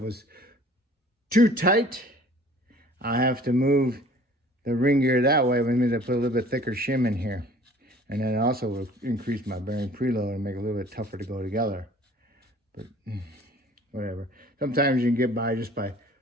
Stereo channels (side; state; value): both; normal; correlation 0.50